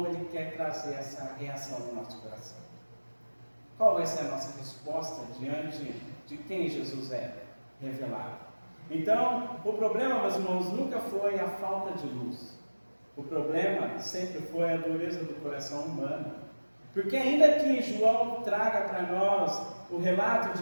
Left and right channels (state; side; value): inverted; both; correlation -1.00